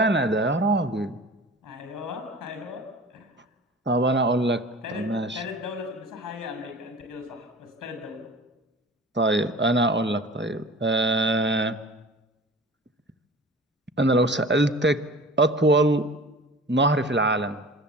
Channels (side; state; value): both; normal; correlation 0.40